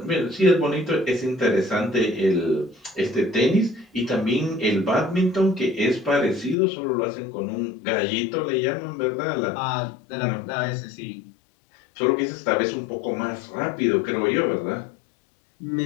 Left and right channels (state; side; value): drops out; right; at 6.6 s